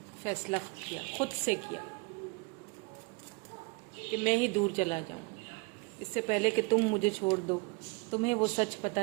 फैसला किया, खुद से किया, कि मैं ही दूर चला जाऊं, इससे पहले कि तुम मुझे छोड़ दो, तुम्हें वो सच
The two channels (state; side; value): quieter; left; 28.4 dB